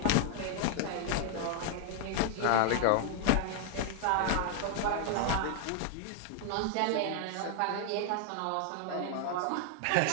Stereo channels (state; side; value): different; both; correlation 0.00